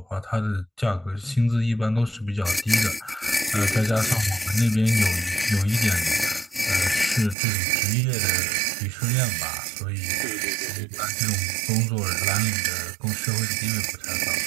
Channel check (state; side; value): drops out; left; at 7.4 s